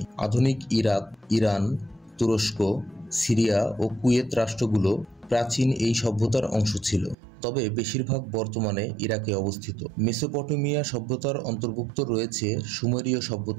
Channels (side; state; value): left; drops out; at 7.2 s